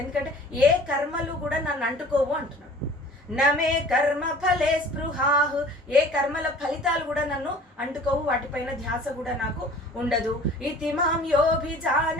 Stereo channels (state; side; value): normal; both; correlation 0.47